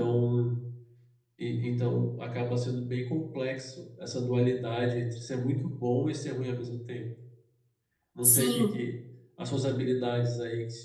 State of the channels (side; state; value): both; identical; correlation 1.00